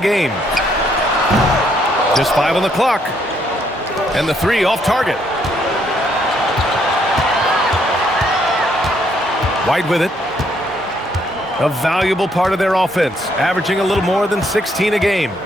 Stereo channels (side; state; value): both; normal; correlation 0.71